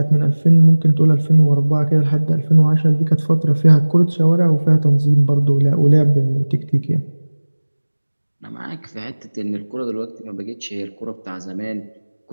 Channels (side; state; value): both; inverted; correlation -1.00